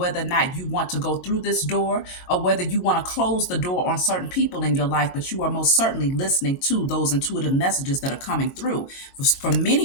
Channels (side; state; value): right; late; 22 ms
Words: or not you want to go through this door or whether you want to close the door on certain people in your life. But you are most certainly listening to those intuitive messages that are coming through. For